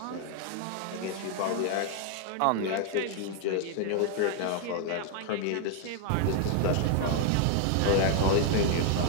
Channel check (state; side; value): different; both; correlation 0.00